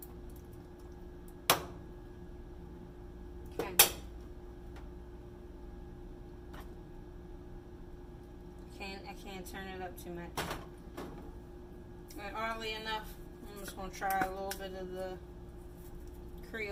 I can't turn it up too much. But oddly enough, I'm just going to try a little bit of the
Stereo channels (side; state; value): both; identical; correlation 1.00